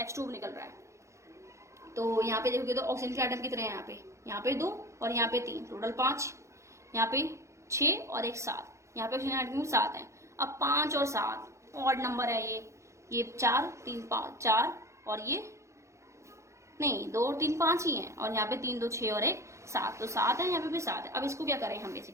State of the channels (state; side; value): late; left; 0.14 ms